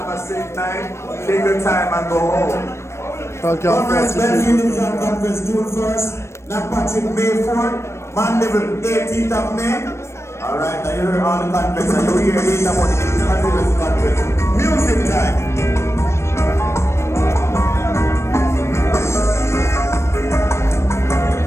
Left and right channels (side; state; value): right; late; 0.13 ms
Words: a safe night. Take your time and go home. Comrades, Benny Division Conference June 1st, Black Patrick May 4th. Mandeville, 18th of May. Alright, I hear all the conference, and you hear later about the conference. Music time.